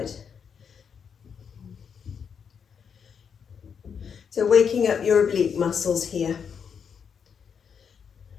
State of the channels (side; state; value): right; quieter; 6.9 dB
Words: So waking up your oblique muscles here.